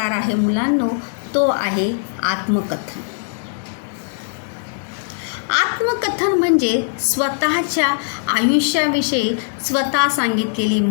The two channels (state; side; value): silent; right; digital silence